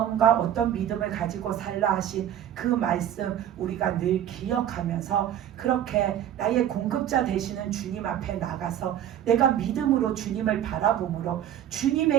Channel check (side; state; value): left; quieter; 10.8 dB